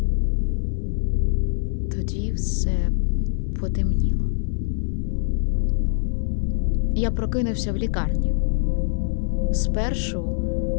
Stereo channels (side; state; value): right; silent; 59 dB below the other